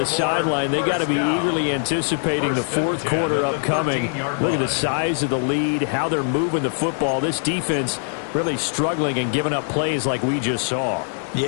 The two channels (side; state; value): right; silent; 64 dB below the other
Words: sideline, they got to be eagerly anticipating the 4th quarter upcoming. Look at the size of the lead, how they're moving the football. This defense really struggling and giving up plays like we just saw.